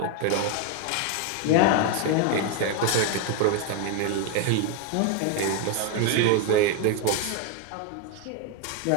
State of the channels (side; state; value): both; different; correlation 0.01